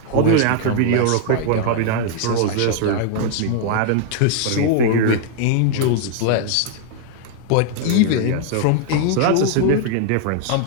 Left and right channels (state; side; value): different; both; correlation 0.00